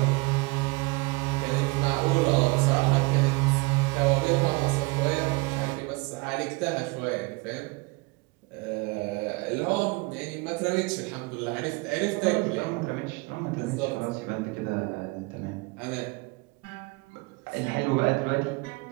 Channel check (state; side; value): quieter; left; 26.1 dB